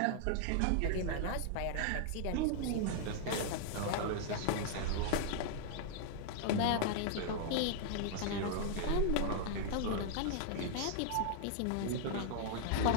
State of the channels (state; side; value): different; both; correlation -0.01